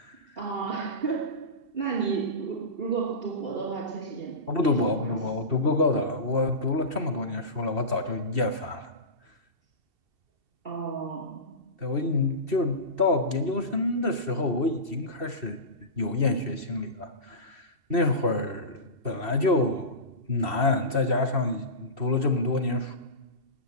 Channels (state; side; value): late; left; 2.7 ms